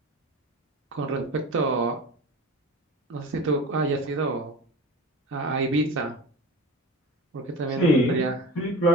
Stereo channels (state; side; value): normal; both; correlation 0.32